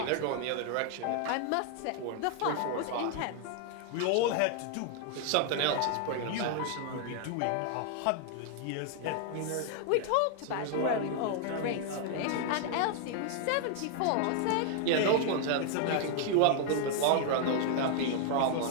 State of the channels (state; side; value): different; both; correlation 0.00